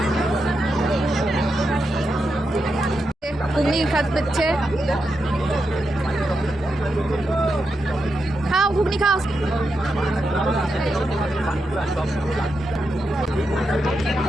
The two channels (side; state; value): both; normal; correlation 0.86